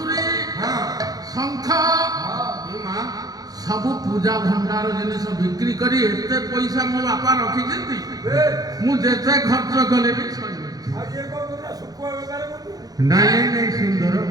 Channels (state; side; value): late; left; 0.18 ms